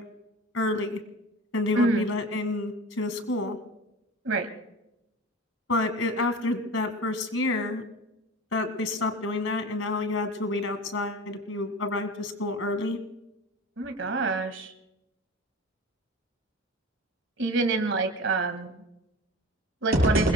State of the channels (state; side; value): normal; both; correlation 0.34